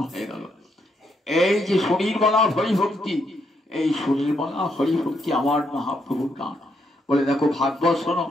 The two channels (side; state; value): both; normal; correlation 0.77